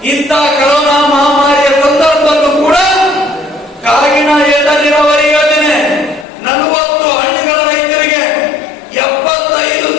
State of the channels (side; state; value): right; drops out; at 6.2 s